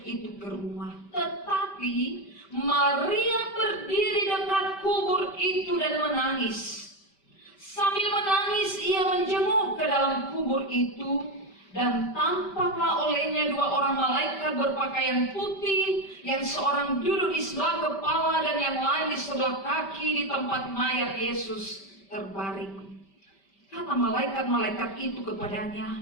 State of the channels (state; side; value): late; right; 5.1 ms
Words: itu ke rumah. Tetapi Maria berdiri dekat kubur itu dan menangis. Sambil menangis ia menjenguk ke dalam kubur itu, dan tampaklah olehnya dua orang malaikat berpakaian putih, yang seorang duduk di sebelah kepala dan yang lain di sebelah kaki di tempat mayat Yesus terbaring. Kata malaikat-malaikat itu